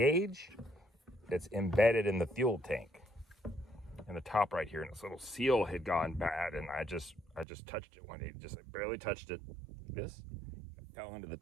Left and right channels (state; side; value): drops out; left; at 7.5 s